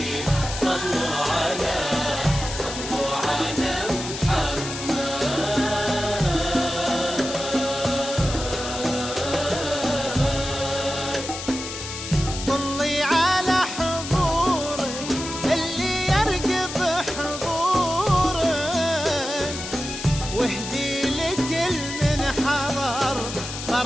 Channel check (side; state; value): left; noise; hiss, 8 dB below the sound